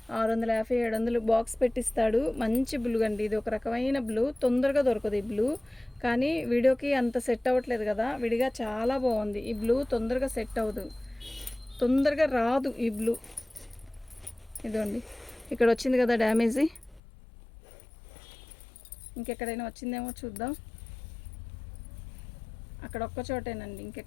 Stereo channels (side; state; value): right; drops out; at 17.0 s